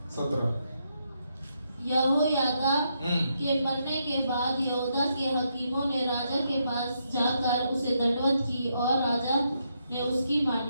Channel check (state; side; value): inverted; both; correlation -0.79